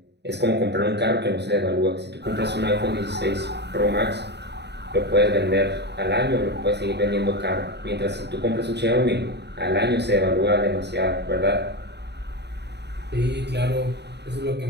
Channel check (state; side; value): late; left; 0.49 ms